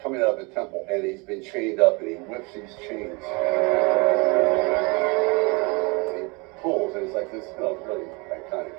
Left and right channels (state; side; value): quieter; left; 28.7 dB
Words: coming out of the temple and he's been chained up and he whips these chains. And he pulls and it's like this, really iconic